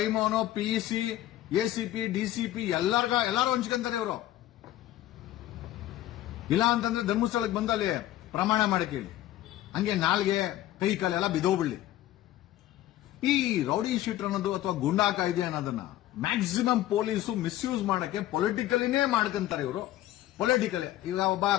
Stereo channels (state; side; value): quieter; right; 14.2 dB